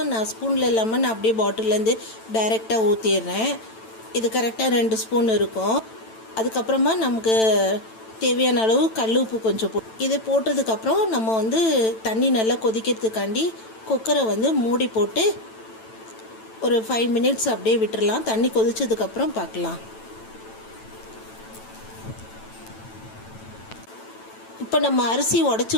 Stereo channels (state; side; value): late; right; 9.0 ms